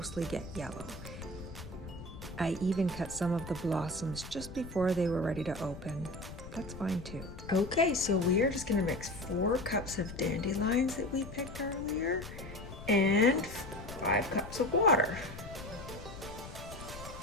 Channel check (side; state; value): left; noise; rumble, 12 dB below the sound